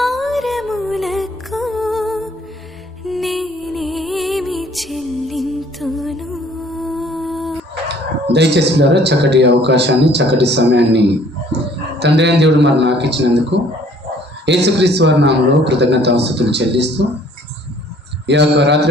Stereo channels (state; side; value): normal; both; correlation 0.57